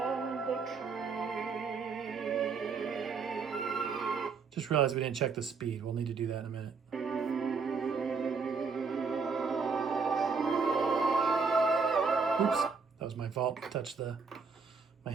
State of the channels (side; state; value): left; quieter; 5.0 dB